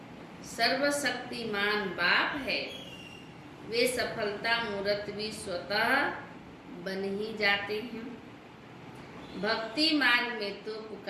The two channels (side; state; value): both; identical; correlation 1.00